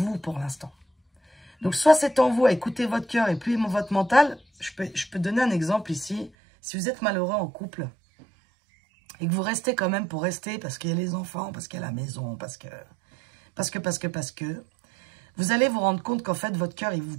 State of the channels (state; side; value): drops out; left; at 6.3 s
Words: pour l'instant. Donc soit c'est en vous à écouter votre cœur et puis votre mental. Je peux donner un exemple ici. Si vous êtes malheureux en couple et que vous restez quand même pour rester parce qu'il y a les enfants, parce qu'il y a la maison, parce que, vous allez vous rendre compte qu'en fait, votre cœur, il vous